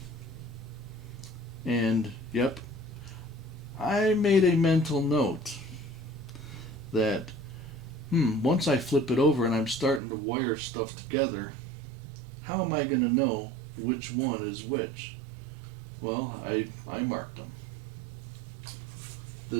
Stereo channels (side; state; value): left; drops out; at 10.0 s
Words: And, yep, I made a mental note that once I flip it over and I'm starting to wire stuff together, how am I going to know which one is which? Well, I marked them.